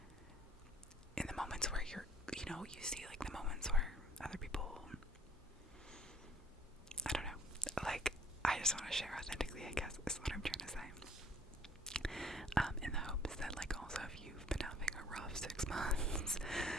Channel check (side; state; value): both; normal; correlation 0.56